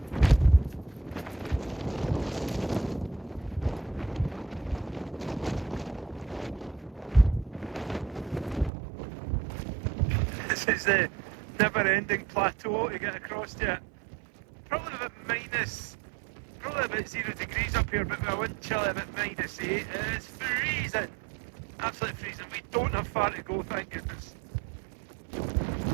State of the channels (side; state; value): left; drops out; at 8.7 s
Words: This is the never-ending plateau to get across to it. Probably about -0 degrees up here, but with a wind chill about -8. It's freezing, absolutely freezing. We don't have far to go, thank goodness.